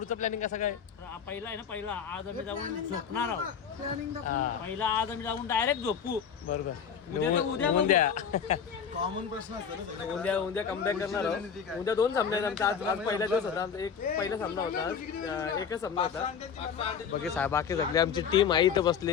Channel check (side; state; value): right; quieter; 7.2 dB